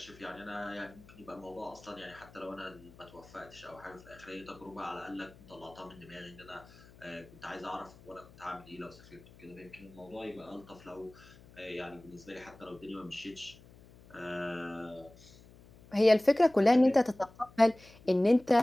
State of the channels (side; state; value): left; noise; hum, 23 dB below the sound